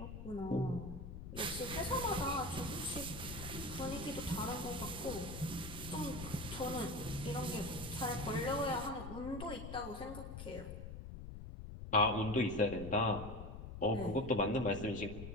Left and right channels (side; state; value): left; noise; rumble, 9 dB below the sound